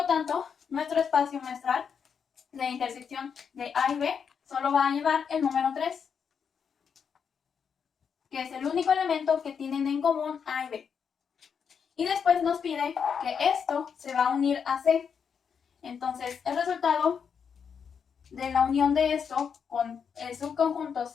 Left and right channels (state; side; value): quieter; right; 6.8 dB